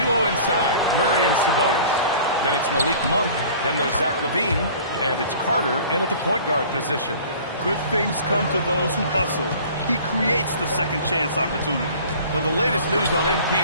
inside, Murray and Sabonis. Then it's Malik Monk. Then there's Zach LaVine. And it's Carter in at the point guard position. Good things come to those who hustle. He creates the second chance opportunity. For the latest news on MP,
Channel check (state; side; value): inverted; both; correlation -0.46